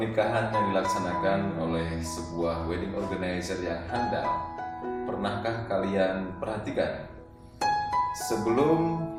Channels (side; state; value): both; identical; correlation 1.00